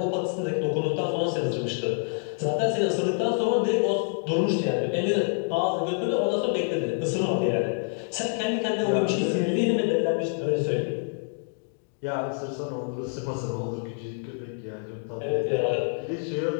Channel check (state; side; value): silent; right; 58 dB below the other